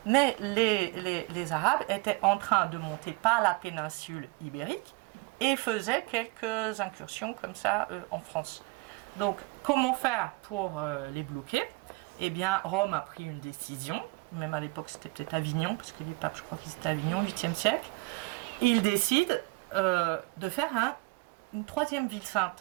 Mais les Arabes étaient en train de monter par la péninsule ibérique et faisaient quelques incursions comme ça en France. Donc, comment faire pour les bloquer? eh bien, Rome a pris une décision, même à l'époque c'était peut-être Avignon, parce que les papes, je crois qu'ils étaient à Avignon, 8e siècle, et ils décident de faire une troisième ville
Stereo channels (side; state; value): left; quieter; 25.4 dB